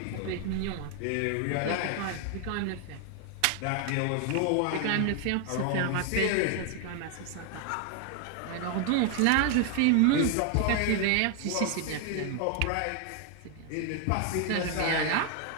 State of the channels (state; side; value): different; both; correlation 0.00